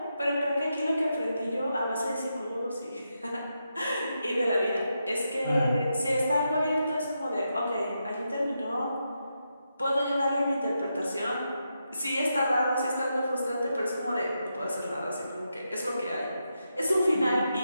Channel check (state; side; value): inverted; both; correlation -0.85